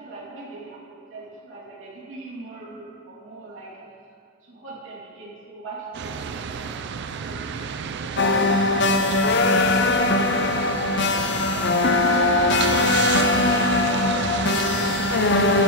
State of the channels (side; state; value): both; normal; correlation 0.01